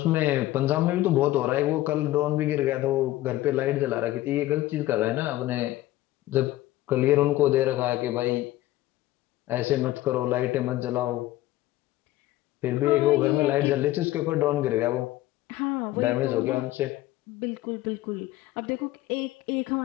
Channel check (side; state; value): right; quieter; 16.0 dB